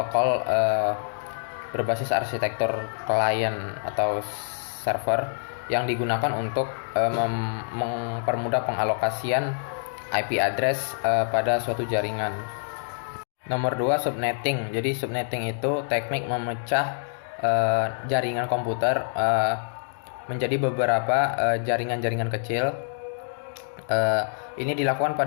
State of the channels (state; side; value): silent; right; digital silence